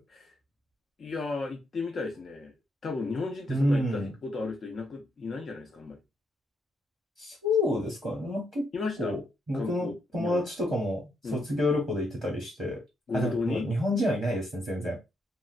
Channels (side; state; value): both; normal; correlation 0.77